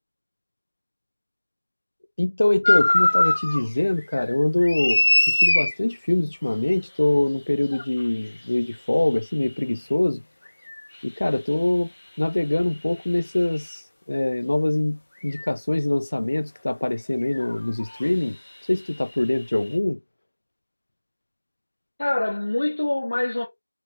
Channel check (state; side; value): inverted; both; correlation -1.00